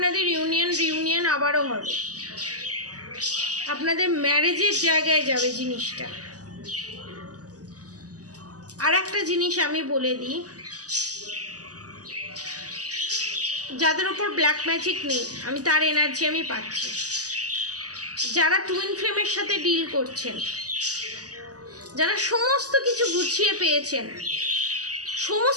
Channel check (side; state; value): left; late; 0.67 ms